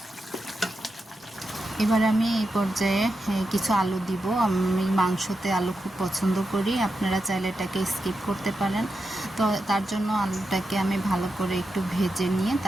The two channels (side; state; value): both; normal; correlation 0.88